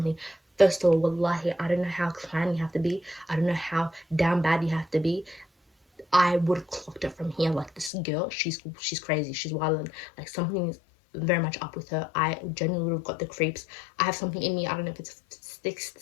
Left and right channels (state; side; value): drops out; right; at 7.9 s